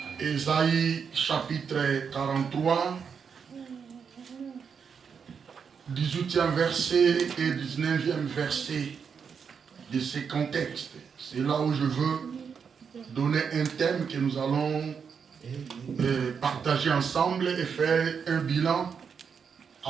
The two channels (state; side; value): quieter; left; 6.5 dB